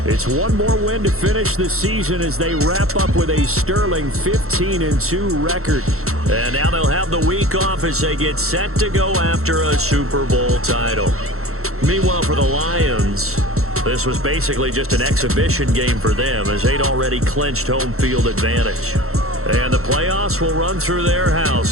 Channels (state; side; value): late; left; 0.63 ms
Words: it's one more win to finish the season as they wrap up with a sterling 15-2 record. And now they'll have the week off as they get set to go after a Super Bowl title. Meanwhile, for the Lions, this was basically just an exhibition game for them as they'd already clinched home field advantage. And the playoffs will run through their